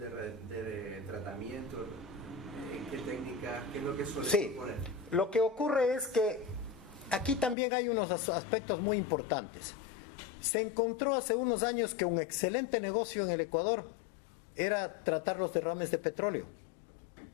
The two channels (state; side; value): drops out; right; at 7.6 s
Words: de tratamiento, ¿en qué técnicas, qué es lo que suelen poner? Lo que ocurre es que aquí también hay unos aspectos muy importantes. Se encontró hace unos años que un excelente negocio en el Ecuador era tratar los derrames de petróleo.